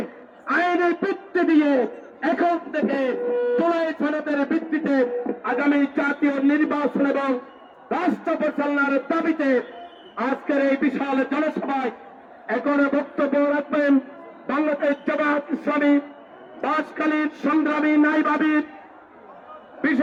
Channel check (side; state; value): both; identical; correlation 1.00